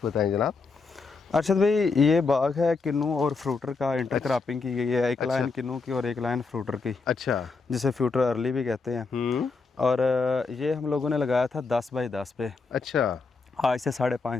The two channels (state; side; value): quieter; right; 4.4 dB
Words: बताएं जनाब। अरशद भाई, ये बाग है किन्नू और फ्रूटर का इंटरक्रॉपिंग की गई है। एक लाइन किन्नू की और एक लाइन फ्रूटर की, अच्छा, जिसे फ्रूटर अर्ली भी कहते हैं। और ये हम लोगों ने लगाया था 10 बाई 10 पे। अच्छा, आज से 5.5